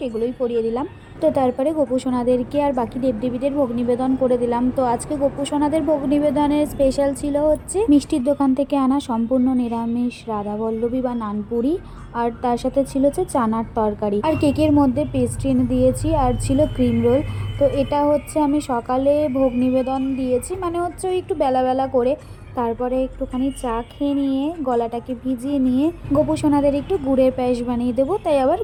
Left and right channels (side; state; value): both; identical; correlation 1.00